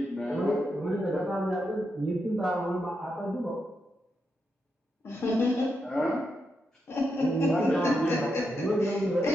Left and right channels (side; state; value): both; normal; correlation 0.84